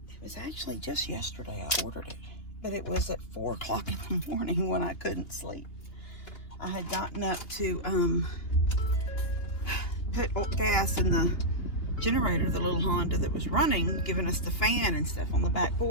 was actually just yesterday I ordered it. But it was at 4 o'clock in the morning when I couldn't sleep. I had gotten up to put gas in the generator, the little Honda that was running, giving us the fan and stuff on the back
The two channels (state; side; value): late; right; 2.9 ms